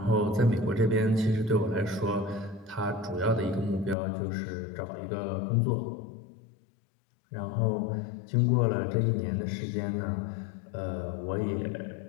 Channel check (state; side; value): drops out; right; at 4.0 s